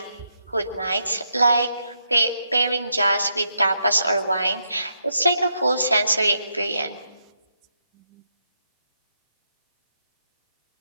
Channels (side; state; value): both; inverted; correlation -0.81